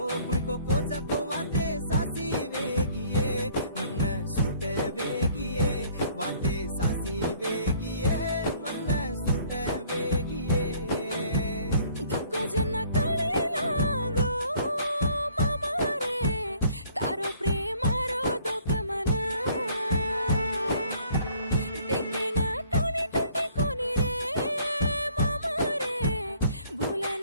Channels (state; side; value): inverted; both; correlation -0.59